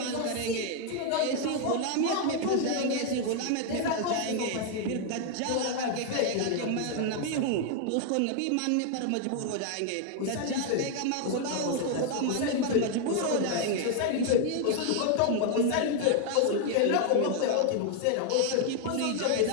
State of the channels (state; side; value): different; both; correlation 0.00